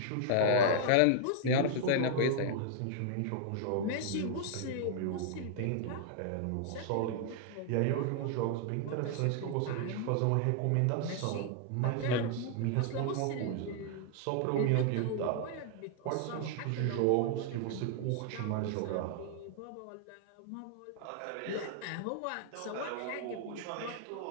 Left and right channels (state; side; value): different; both; correlation -0.01